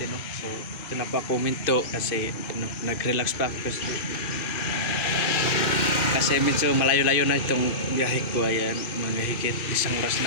no. So ito na po ako minto kasi nag-relax pa ako kasi medyo malayo-layo na itong biyahe ko. Ayan, mga higit isang oras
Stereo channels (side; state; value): right; late; 2.5 ms